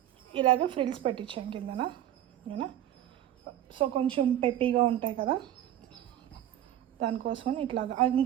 ఇలాగ ఫ్రిల్స్ పెట్టించాను కిందన. సో కొంచెం పెప్పీగా ఉంటాయి కదా, దానికోసం ఇట్లాగా.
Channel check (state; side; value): quieter; left; 12.0 dB